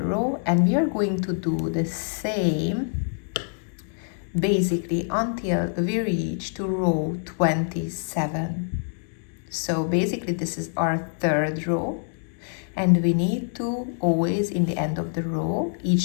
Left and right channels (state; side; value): silent; right; digital silence